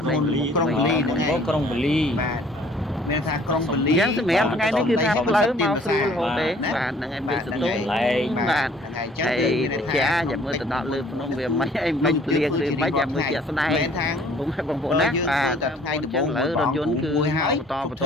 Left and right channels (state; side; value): normal; both; correlation 0.56